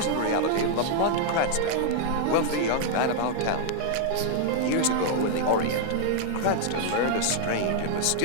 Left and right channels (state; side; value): different; both; correlation 0.00